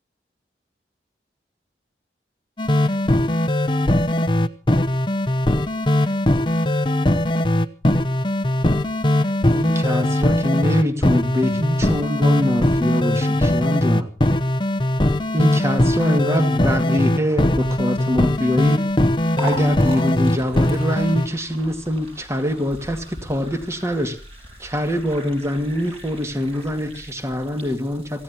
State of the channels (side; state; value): both; normal; correlation 0.84